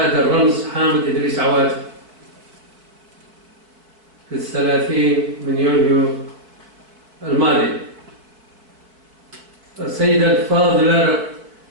الرمز حامد إدريس عواتي في 30 من يونيو الماضي. السيدة الفاضلة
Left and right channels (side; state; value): left; late; 4.6 ms